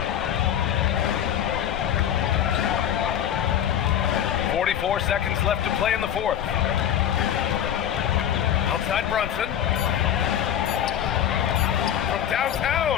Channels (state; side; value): quieter; right; 10.0 dB